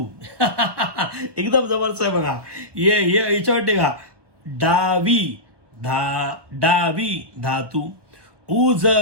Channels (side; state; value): left; late; 1.1 ms